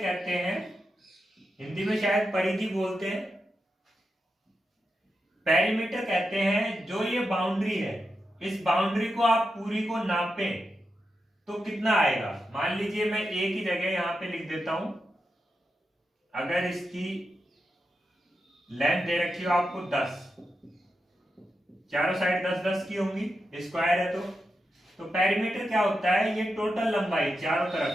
हैं? हिंदी में शायद परिधि बोलते हैं। पेरीमीटर कहते हैं जो ये बाउंड्री है, इस बाउंड्री को आप पूरी को नापें तो कितना आएगा। मान लीजिए मैं ए की जगह यहां पे लिख देता हूं। अगर इसकी लेंथ दे रखी हो आपको 10, चारों साइड 10-10 की होंगी, स्क्वायर है तो पेरीमीटर क्या होता है? ये टोटल लंबाई चारों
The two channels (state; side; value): normal; both; correlation 0.88